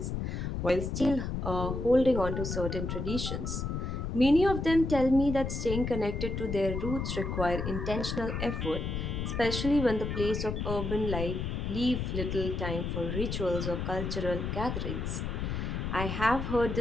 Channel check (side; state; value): left; noise; rumble, 3 dB below the sound